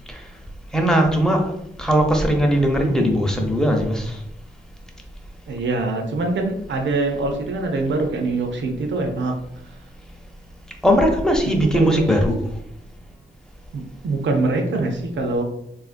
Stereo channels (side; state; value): both; normal; correlation 0.71